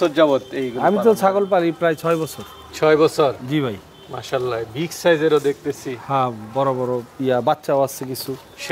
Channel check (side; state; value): both; identical; correlation 1.00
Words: যাবত এই? আমি তো ছাগল পালি প্রায় 6 বছর। 6 বছর? জি ভাই। মাশাআল্লাহ, বিগ সাইজেরও দেখতেছি। হ্যাঁ, বড় বড় বাচ্চাও আছে কিছু,